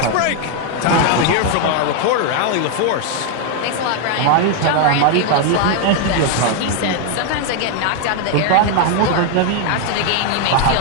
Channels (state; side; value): different; both; correlation 0.01